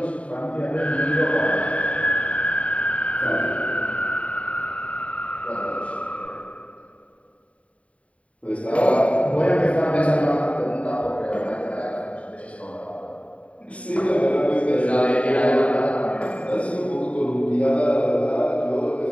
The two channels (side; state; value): right; late; 0.065 ms